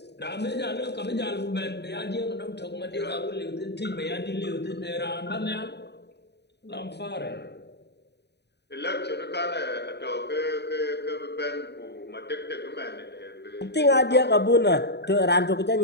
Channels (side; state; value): right; late; 0.49 ms